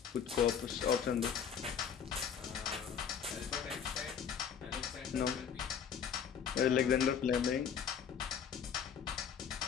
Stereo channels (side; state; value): right; quieter; 7.6 dB